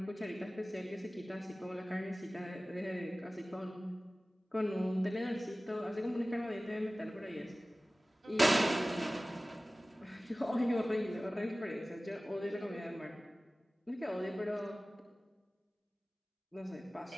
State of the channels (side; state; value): both; normal; correlation 0.97